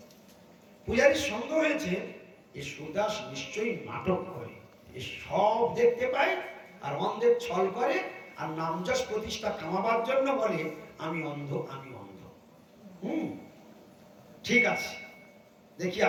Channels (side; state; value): both; identical; correlation 1.00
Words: পূজারীর সন্দেহ হয়েছে এ সুরদাস নিশ্চয়ই নাটক করে, এ সব দেখতে পায় আর অন্ধের ছল করে, আর নামযশ প্রতিষ্ঠা কামাবার জন্য বলে আমি অন্ধ আমি অন্ধ। ঠিক আছে, দেখি